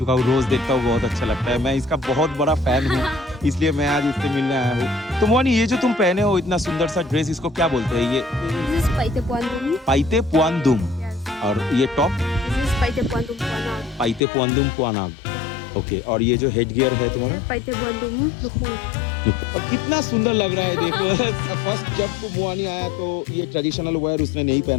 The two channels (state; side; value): drops out; right; at 14.2 s